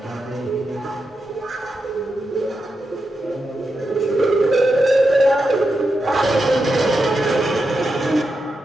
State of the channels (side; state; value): both; normal; correlation 0.87